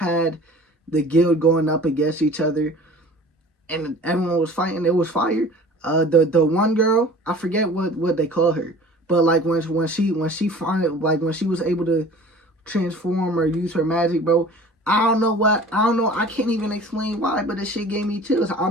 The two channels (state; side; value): normal; both; correlation 0.44